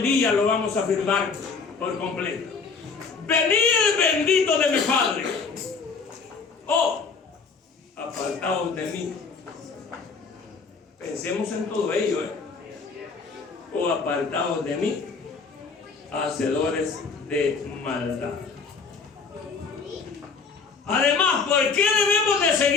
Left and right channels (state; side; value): quieter; right; 4.9 dB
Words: día lo vamos a afirmar por completo. Venid bendito de mi Padre. Oh, apartaos de mí. Pensemos en todo ello, o apartados de mí, hacedores de maldad. Además, ¿por qué debemos de